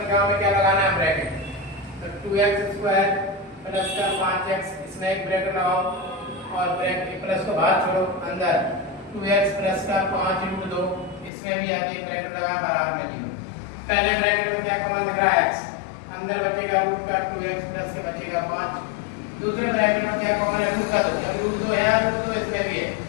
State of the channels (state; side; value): drops out; right; at 11.3 s